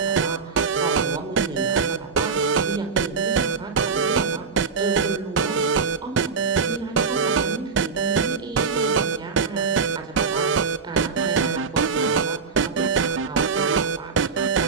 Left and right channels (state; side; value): quieter; left; 5.2 dB